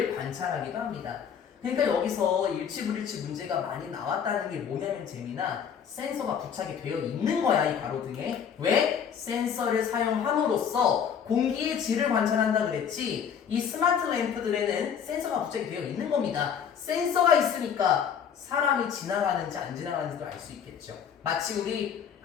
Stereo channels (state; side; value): quieter; right; 7.7 dB